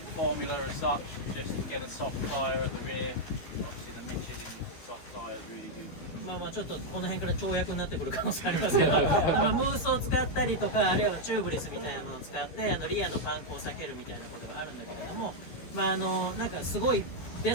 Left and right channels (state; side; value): late; right; 12 ms